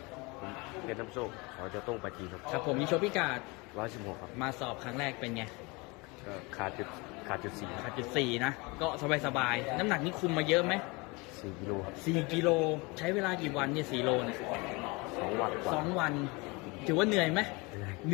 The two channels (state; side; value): quieter; right; 26.5 dB